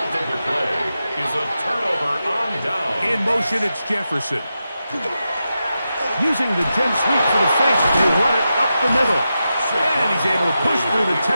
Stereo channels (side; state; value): both; inverted; correlation -0.89